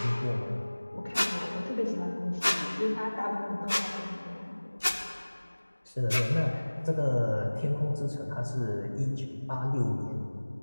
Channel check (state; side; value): inverted; both; correlation -1.00